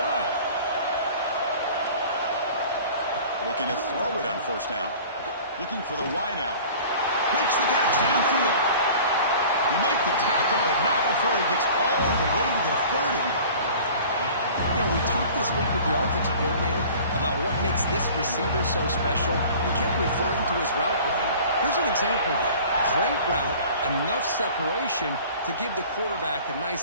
Looking to throw it on 1st down. Looking for the wide out. Makes the catch downfield. He makes the tackle, but not before he gets all the way to the 30. You know, we talked this week with the offensive coordinator about what makes this receiver so special. He kept referring to his route running. Here's an example of that. Great route, enough separation to give the quarterback a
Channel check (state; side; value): inverted; both; correlation -0.45